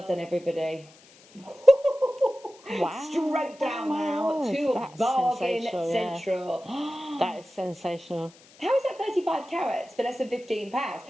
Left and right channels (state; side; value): noise; left; hiss, 25 dB below the sound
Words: done, everybody. Wow. Straight down now to Bargain Central. That is sensational. How is that 35 carats for less than £15?